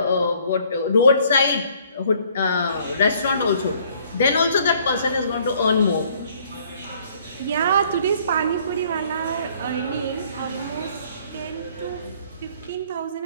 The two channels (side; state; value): both; inverted; correlation -0.60